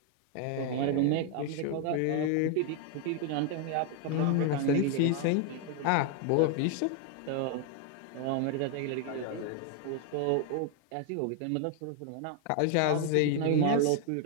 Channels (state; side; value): different; both; correlation 0.00